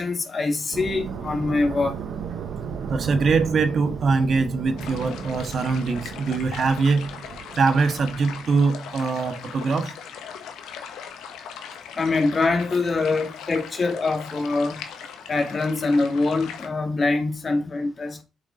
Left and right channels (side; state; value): both; normal; correlation 0.85